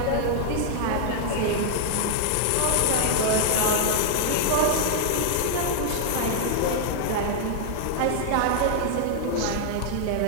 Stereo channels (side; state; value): both; different; correlation 0.00